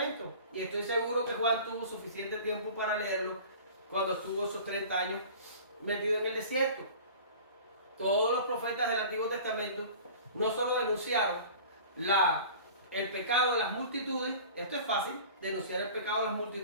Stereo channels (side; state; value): both; inverted; correlation -0.41